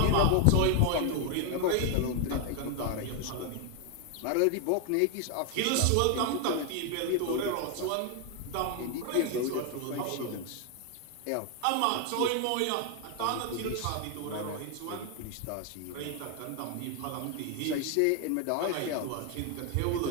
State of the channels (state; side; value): different; both; correlation 0.01